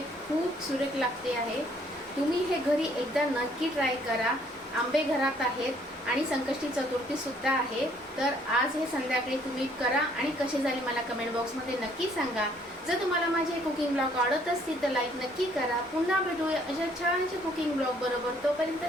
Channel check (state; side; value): normal; both; correlation 0.63